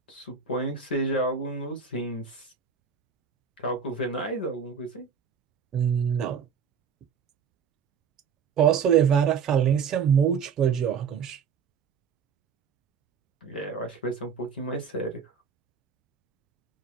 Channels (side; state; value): left; quieter; 6.7 dB